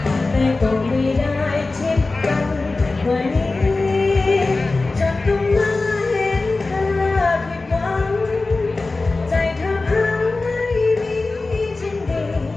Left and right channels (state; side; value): quieter; right; 3.5 dB